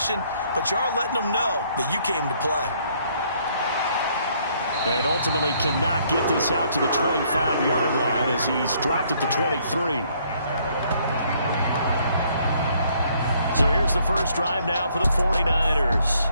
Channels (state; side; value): inverted; both; correlation -0.66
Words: but you are letting them know that you came to play. And ultimately cannot get this out to the 25-yard line as he's dropped at the 23. So here's the first drive now for the 49ers.